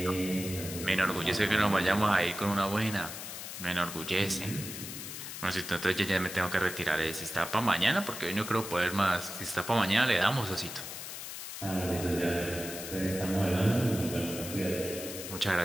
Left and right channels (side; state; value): left; noise; hiss, 8 dB below the sound